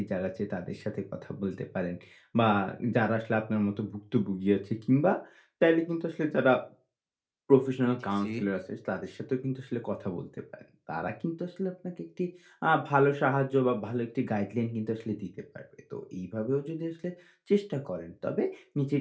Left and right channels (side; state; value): both; identical; correlation 1.00